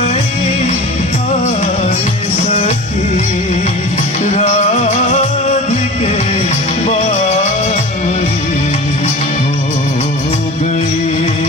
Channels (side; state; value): both; normal; correlation 0.36